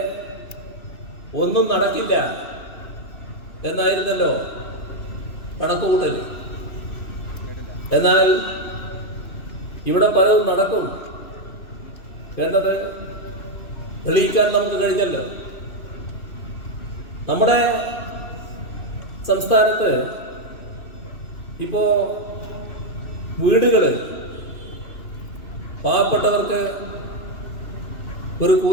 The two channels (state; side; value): late; right; 2.9 ms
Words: ഒന്നും നടക്കില്ല എന്നായിരുന്നല്ലോ കണക്കുകൂട്ടൽ. എന്നാൽ ഇവിടെ പലതും നടക്കും എന്നത് തെളിയിക്കാൻ നമുക്ക് കഴിഞ്ഞല്ലോ. നമ്മുടെ സംസ്ഥാനത്ത് ഇപ്പോ വീടുകള് പാവപ്പെട്ടവർക്ക് ഒരു